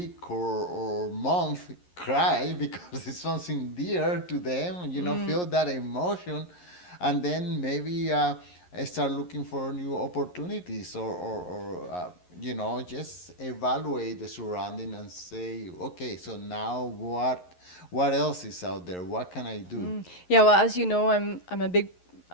or month, cry because it's something dear to them. Feel that emotion, and then maybe start looking for new opportunities, or just evaluate the surrounding and say, okay, so now what else is out there? What can I do? Yeah, well, as you know, I'm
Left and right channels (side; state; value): right; late; 11 ms